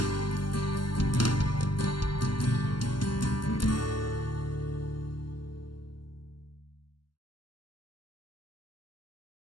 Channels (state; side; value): late; right; 0.72 ms